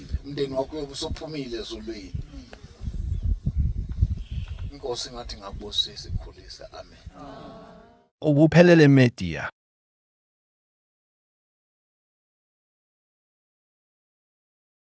umndeni wakho uyobusuphumile ezulwini inkosi ngathi ngakubusisa ikhulisa amen Ubuphelele Media.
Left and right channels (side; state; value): both; identical; correlation 1.00